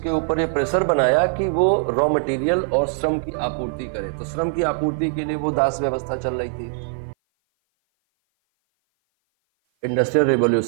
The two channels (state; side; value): silent; left; 56 dB below the other